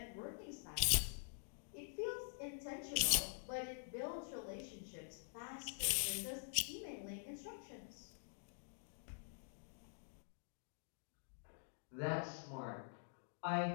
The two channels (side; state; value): right; silent; digital silence